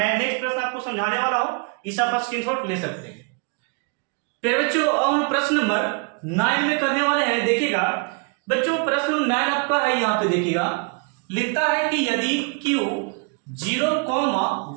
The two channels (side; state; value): left; quieter; 33.5 dB